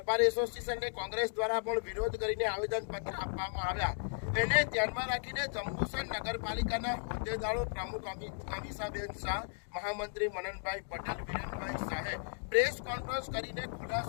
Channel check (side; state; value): right; silent; digital silence